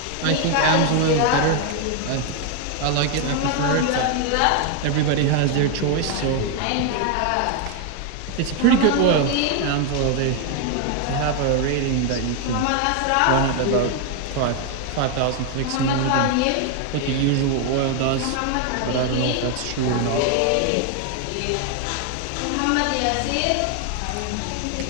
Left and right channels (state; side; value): different; both; correlation 0.01